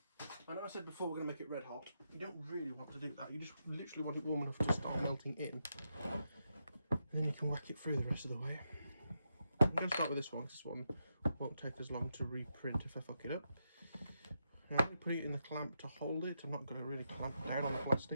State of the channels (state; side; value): inverted; both; correlation -0.84